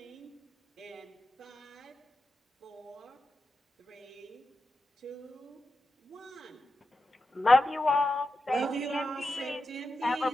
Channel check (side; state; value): both; normal; correlation 0.90